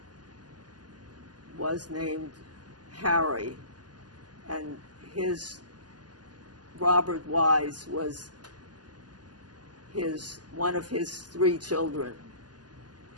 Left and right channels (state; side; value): late; left; 0.70 ms